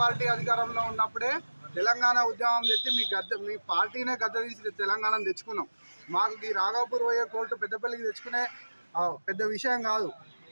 పార్టీ అధికారంలో ఉన్నప్పుడే తెలంగాణ ఉద్యమం తెచ్చి మీ పార్టీనే గద్ద తీసి తెలంగాణను తెచ్చుకున్నాం. మాకు ఈ రాఘవపూర్ పోయే కోర్టు పెద్దపల్లికి తెచ్చుకునే పెద్ద విషయం కాదు.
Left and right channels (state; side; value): inverted; both; correlation -1.00